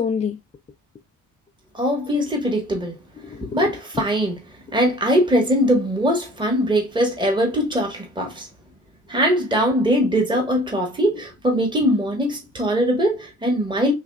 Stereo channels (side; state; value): both; normal; correlation 0.50